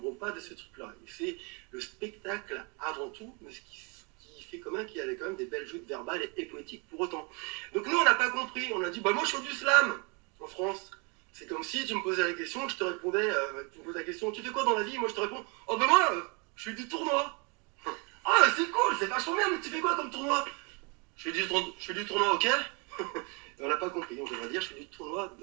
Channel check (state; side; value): quieter; left; 32.3 dB